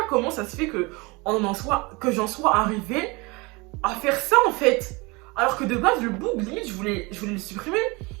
comment ça se fait que j'en sois arrivé à faire ça en fait. Alors que de base, le bug, limite, je voulais le supprimer.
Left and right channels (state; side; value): quieter; left; 25.9 dB